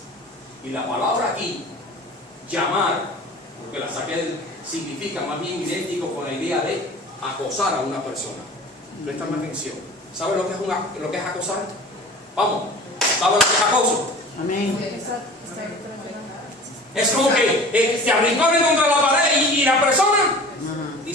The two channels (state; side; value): normal; both; correlation 0.41